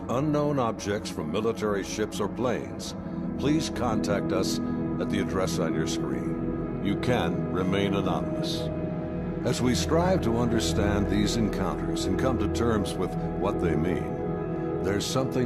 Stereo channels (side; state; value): both; identical; correlation 1.00